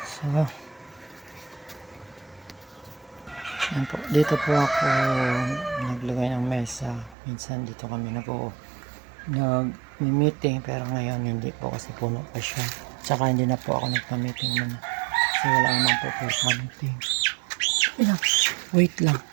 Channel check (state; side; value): drops out; left; at 7.2 s